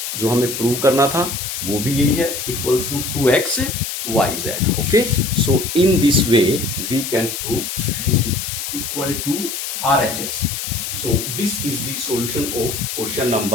जो हमें प्रूव करना था वो भी यही है, equals to 2xyz। Okay, so in this way we can prove this is equal to RHS. So this is the solution of question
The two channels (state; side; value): noise; left; hiss, 5 dB below the sound